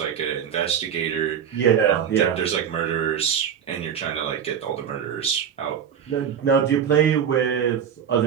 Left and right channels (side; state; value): left; quieter; 8.2 dB